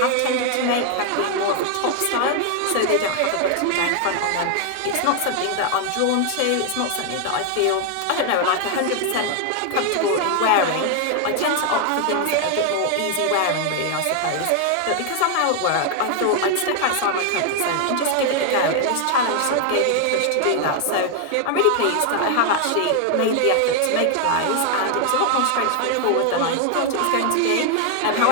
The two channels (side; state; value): both; different; correlation 0.00